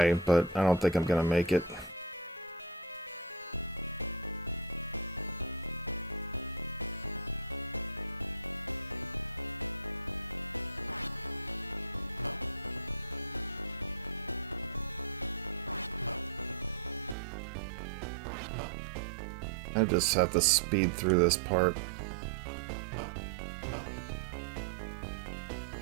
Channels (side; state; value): left; drops out; at 17.2 s